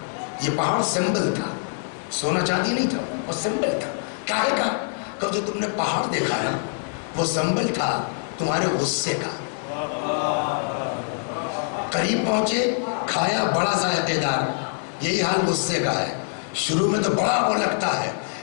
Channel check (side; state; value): right; silent; digital silence